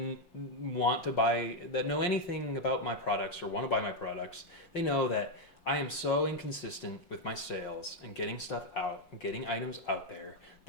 want to buy, that know anything about my products or want to buy my products, they know that I am so inconsistent with my sales and getting stuff out and getting items out there.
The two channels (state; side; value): late; right; 5.5 ms